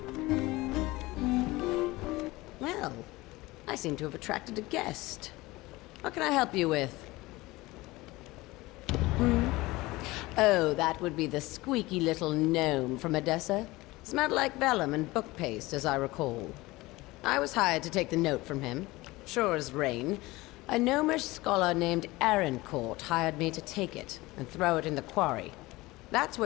Well, I seem to have attracted a guest. What can I help you with? Oh, that would be the squeaky little gnome from Edessa. Smelled like vellum and book paste, as I recall. I was hired to take the note from him. Sure as rain. A gnomish scholar named Arancourt hired me to take it and throw it in the quarry. That's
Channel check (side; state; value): right; quieter; 20.4 dB